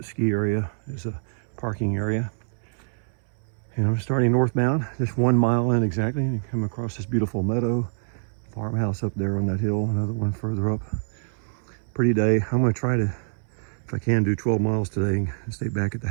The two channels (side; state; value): left; silent; 61 dB below the other